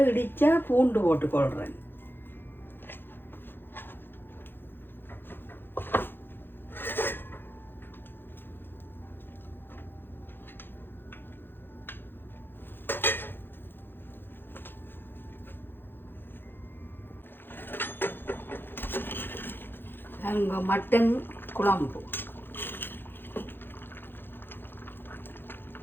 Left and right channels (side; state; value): right; late; 0.10 ms